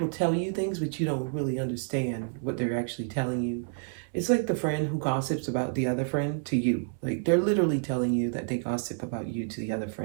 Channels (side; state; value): left; silent; 57 dB below the other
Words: tell you things, but you don't really understand what they're actually telling you. It's like the friend who gossips about the other friend to you. Like, they're literally telling you that they gossip about you to the other